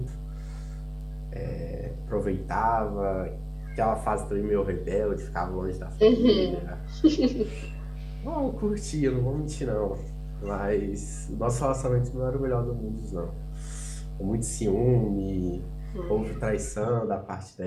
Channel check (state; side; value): identical; both; correlation 1.00